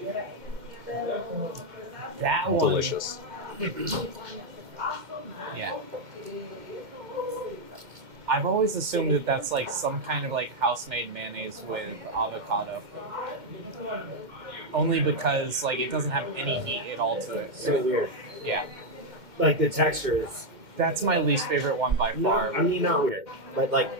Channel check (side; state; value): left; late; 2.1 ms